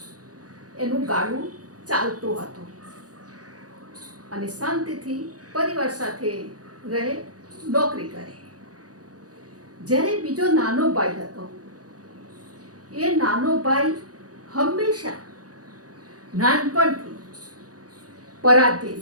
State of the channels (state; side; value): late; left; 0.67 ms